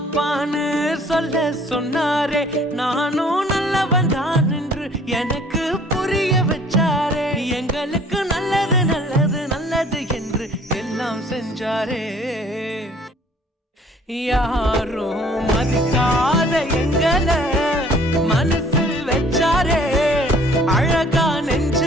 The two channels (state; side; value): normal; both; correlation 0.55